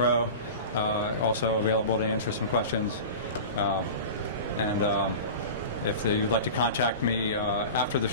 also available to answer some questions. If you'd like to contact me after the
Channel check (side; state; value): both; inverted; correlation -0.33